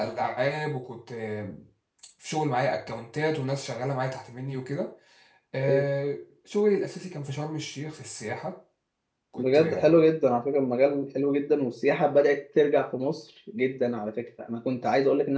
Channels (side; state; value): both; identical; correlation 1.00